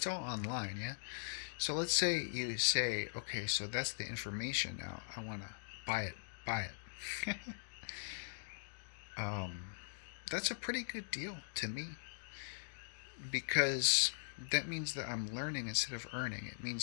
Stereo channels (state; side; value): silent; right; digital silence